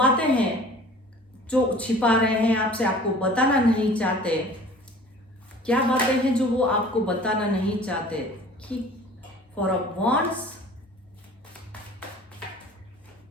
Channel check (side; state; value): both; normal; correlation 0.47